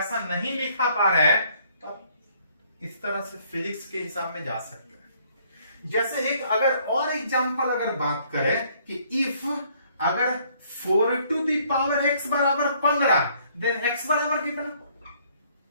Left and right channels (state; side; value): inverted; both; correlation -0.64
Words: नहीं लिखा पा रहे हैं तो आप इस तरह से फिजिक्स के हिसाब में जा सकते हैं। जैसे एक अगर और एग्जांपल अगर बात करें कि इफ अगर 4 टू दी पावर x बराबर 15, देन x बराबर कितना,